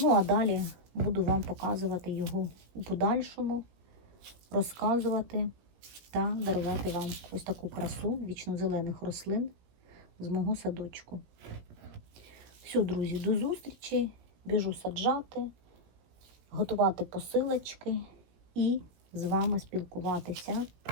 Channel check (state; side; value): late; left; 17 ms